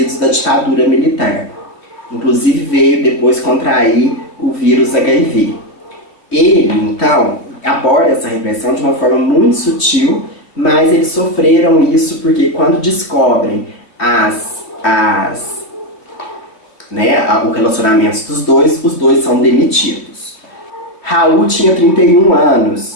da ditadura militar. Inclusive veio depois contrair o vírus HIV. Ele, então, aborda essa repressão de uma forma muito sutil, mas eles sofreram isso porque quando descobrem o relacionamento dos dois, os dois são demitidos. Raul tinha 31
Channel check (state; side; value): late; right; 3.1 ms